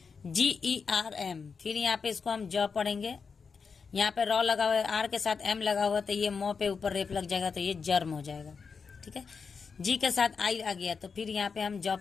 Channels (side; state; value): right; quieter; 5.5 dB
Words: GERM। फिर यहाँ पे इसको हम ज पढ़ेंगे। यहाँ पे र लगा हुआ है, आर के साथ एम लगा हुआ तो ये म पे ऊपर रेप लग जाएगा तो ये जर्म हो जाएगा, ठीक है। जी के साथ आई आ गया तो फिर यहाँ पे हम ज